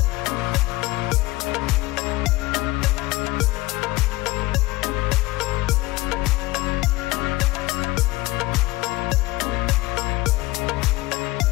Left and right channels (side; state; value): right; quieter; 19.8 dB